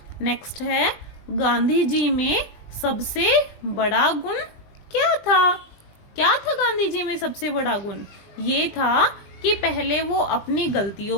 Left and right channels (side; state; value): right; late; 20 ms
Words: नेक्स्ट है गांधी जी में सबसे बड़ा गुण क्या था? क्या था गांधी जी में सबसे बड़ा गुण? ये था कि पहले वो अपनी